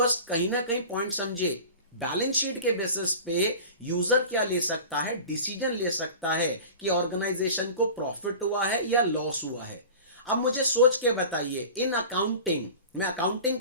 कहीं ना कहीं पॉइंट समझे, बैलेंस शीट के बेसिस पे यूजर क्या ले सकता है, डिसीजन ले सकता है कि ऑर्गेनाइजेशन को प्रॉफिट हुआ है या लॉस हुआ है। अब मुझे सोच के बताइए, इन अकाउंटिंग, मैं अकाउंटिंग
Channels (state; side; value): inverted; both; correlation -0.37